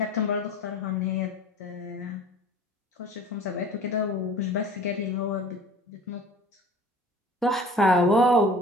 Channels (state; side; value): normal; both; correlation 0.45